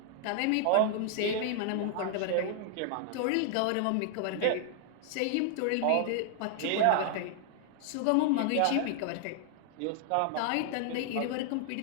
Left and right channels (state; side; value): different; both; correlation 0.00